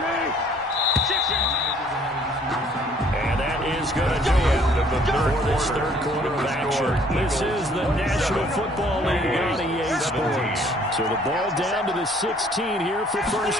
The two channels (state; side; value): normal; both; correlation 0.60